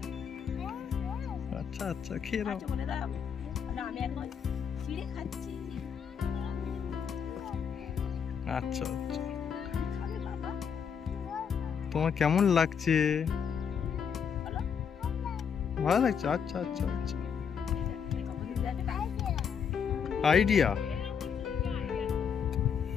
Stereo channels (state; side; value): quieter; right; 7.1 dB